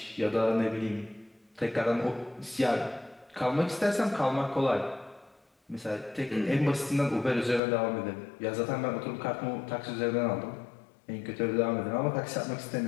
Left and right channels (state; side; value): drops out; right; at 7.6 s